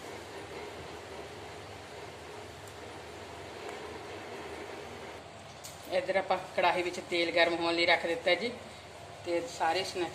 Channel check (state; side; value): identical; both; correlation 1.00